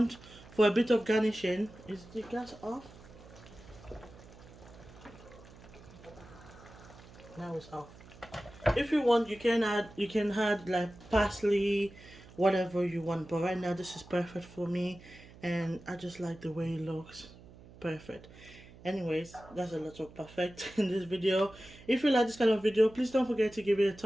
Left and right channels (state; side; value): noise; right; hum, 20 dB below the sound